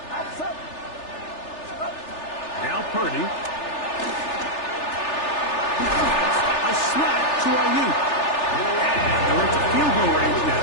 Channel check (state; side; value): late; right; 3.4 ms